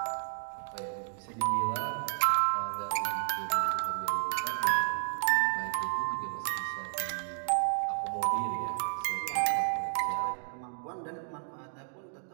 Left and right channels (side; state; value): left; silent; digital silence